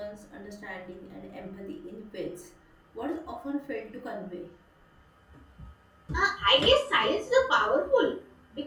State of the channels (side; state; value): both; identical; correlation 1.00